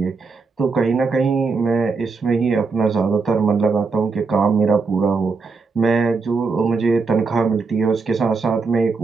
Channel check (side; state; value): left; quieter; 4.5 dB